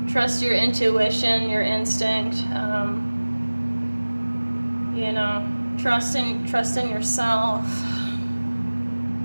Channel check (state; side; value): inverted; both; correlation -1.00